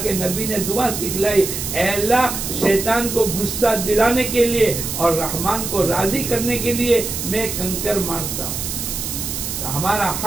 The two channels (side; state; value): right; noise; hiss, 4 dB below the sound